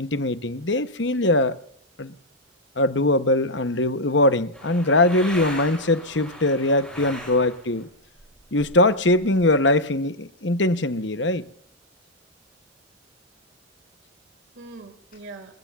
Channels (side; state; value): both; normal; correlation -0.02